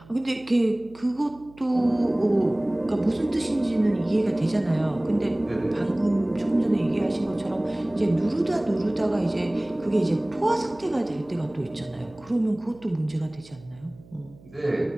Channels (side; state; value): right; noise; hum, 23 dB below the sound